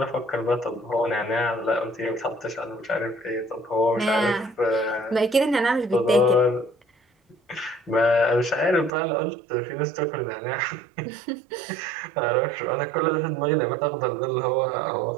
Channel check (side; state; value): left; drops out; at 8.9 s